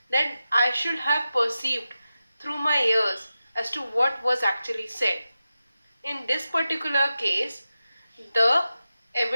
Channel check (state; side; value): inverted; both; correlation -0.93